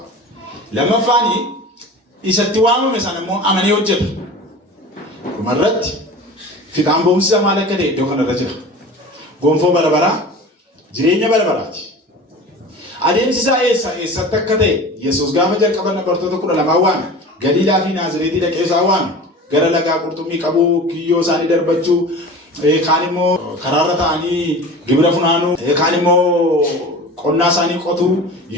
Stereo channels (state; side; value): normal; both; correlation 0.36